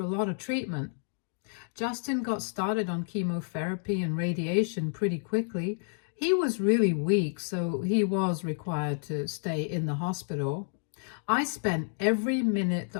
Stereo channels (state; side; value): silent; right; digital silence